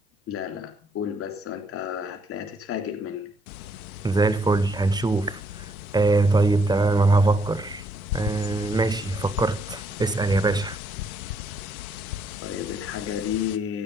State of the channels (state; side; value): normal; both; correlation 0.70